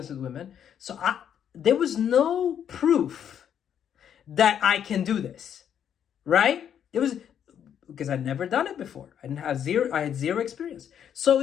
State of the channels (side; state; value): right; quieter; 9.0 dB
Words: with women. So there was no proof that I can do this. Right? It was because I'd never done it before. I had zero experience. So